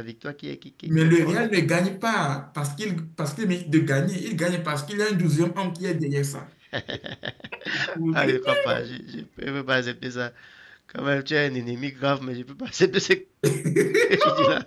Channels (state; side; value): identical; both; correlation 1.00